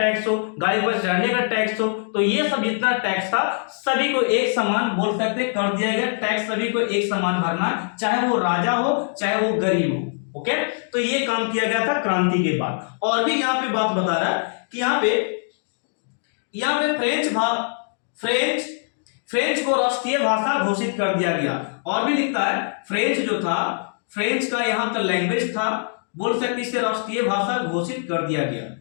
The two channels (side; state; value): right; silent; digital silence